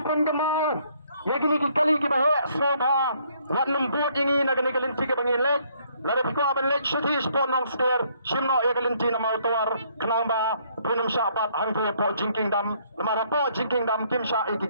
penggemar, ya kini kali kita hek semua, wat lembut ini nak kini kelinci ke bangin lek, Lada piko aban lek shuti spon nong steer shimno ya galinti na mautuar kenang ba punum syapat hangtu po jingking dam lemara po jingking dam kim sya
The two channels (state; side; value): inverted; both; correlation -0.66